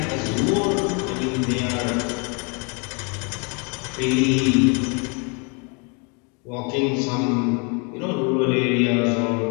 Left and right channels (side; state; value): right; quieter; 33.7 dB